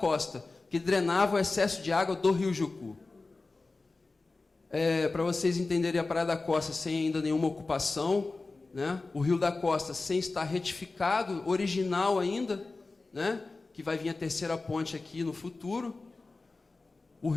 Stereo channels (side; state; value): right; quieter; 3.6 dB